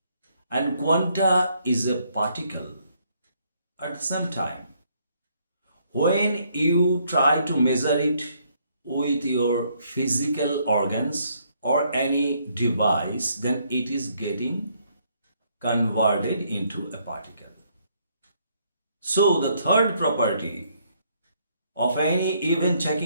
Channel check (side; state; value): both; inverted; correlation -0.70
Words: and quanta is a particle at the same time. When you try to measure it with your physical organs or any device, then it is getting converted into a particle. So the third property of any event